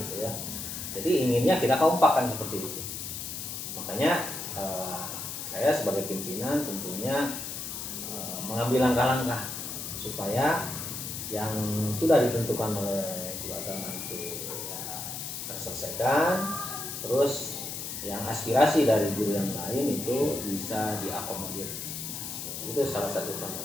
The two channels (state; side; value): noise; left; hiss, 6 dB below the sound